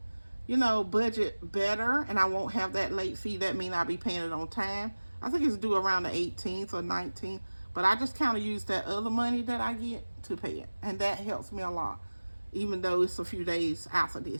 budget better and I won't have that late fee. That means I'll be paying it on time. I think it's due around the 18th or 19th. But I just kind of use that other money that I get to pay it. And that helps me a lot, even though it's a few days after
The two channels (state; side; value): inverted; both; correlation -1.00